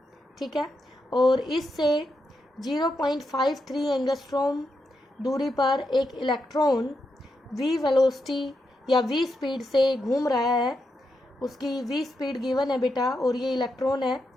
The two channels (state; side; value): normal; both; correlation 0.84